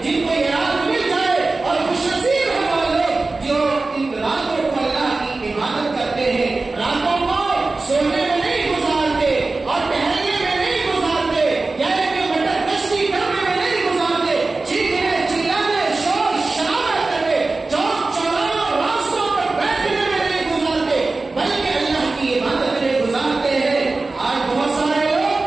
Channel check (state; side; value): quieter; left; 3.5 dB